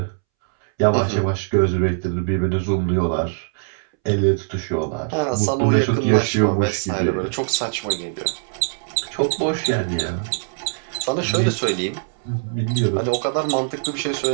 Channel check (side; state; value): left; silent; 64 dB below the other